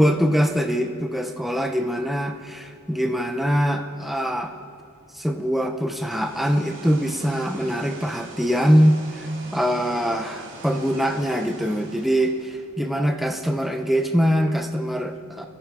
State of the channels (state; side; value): normal; both; correlation 0.89